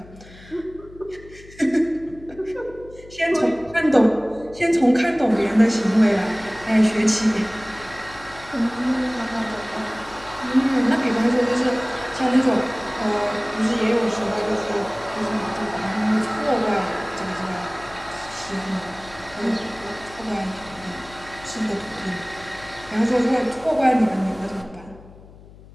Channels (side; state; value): left; noise; hum, 21 dB below the sound